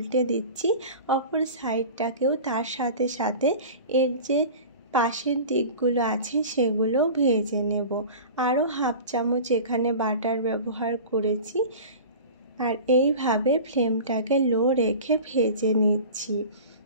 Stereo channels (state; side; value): inverted; both; correlation -0.36